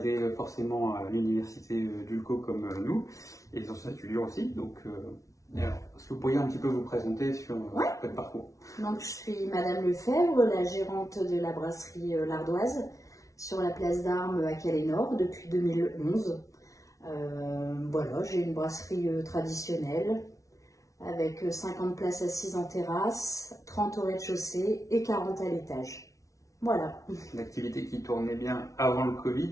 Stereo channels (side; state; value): right; late; 0.16 ms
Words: forcément à l'université d'Ulco comme nous, et les anciens étudiants aussi. Donc, alors, est-ce que vous pourriez un petit peu vous présenter sur votre parcours? Donc, je suis Madame Lefebvre, la gérante de la brasserie L'Ardoise sur la place d'Armes à Calais-Nord depuis 2011. Voilà, j'ai une brasserie traditionnelle avec 50 places assises en terrasse, 30 au rez-de-chaussée et 40 à l'étage. Voilà. Une activité qui tournait bien avant le